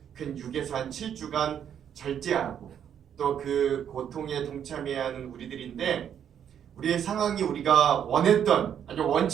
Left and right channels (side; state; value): left; quieter; 9.0 dB